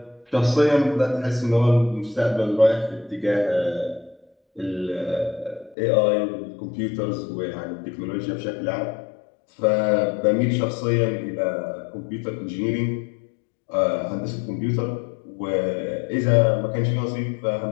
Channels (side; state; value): right; drops out; at 5.8 s